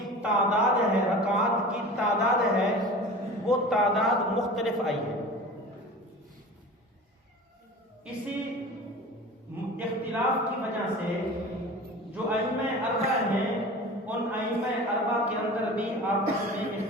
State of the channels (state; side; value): normal; both; correlation 0.37